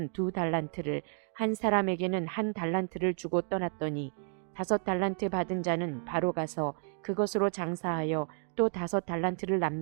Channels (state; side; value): silent; left; 57 dB below the other